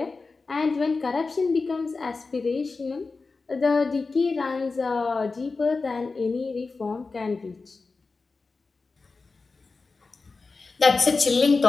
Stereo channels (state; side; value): quieter; right; 4.1 dB